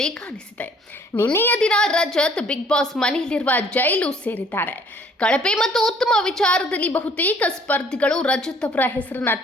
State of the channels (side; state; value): both; normal; correlation 0.58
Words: ಕಾಣಿಸಿದೆ. ನಿನ್ನೆಯ ದಿನ ರಜತ್ ಬಿಗ್ ಬಾಸ್ ಮನೆಯಲ್ಲಿರುವ ಜೈಲು ಸೇರಿದ್ದಾರೆ. ಕಳಪೆ ಮತ್ತು ಉತ್ತಮ ವಿಚಾರದಲ್ಲಿ ಬಹುತೇಕ ಸ್ಪರ್ಧಿಗಳು ರಜತ್ ಅವರ ಹೆಸರನ್ನ